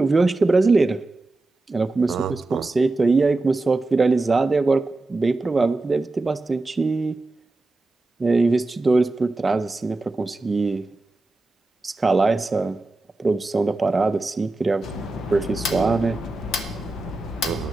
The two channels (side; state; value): left; quieter; 3.1 dB